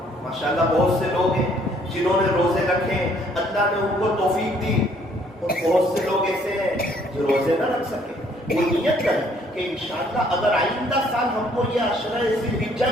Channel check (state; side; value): normal; both; correlation 0.63